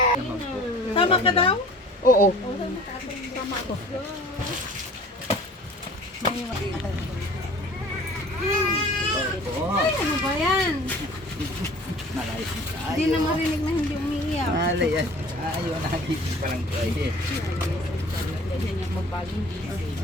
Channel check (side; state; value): both; normal; correlation 0.46